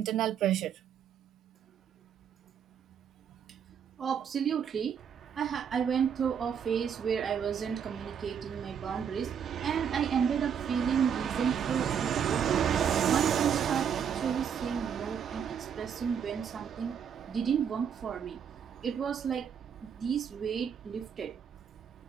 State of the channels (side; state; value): left; quieter; 7.7 dB